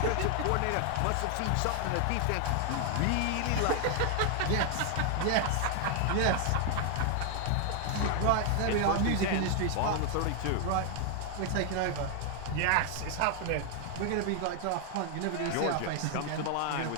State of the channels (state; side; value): different; both; correlation 0.00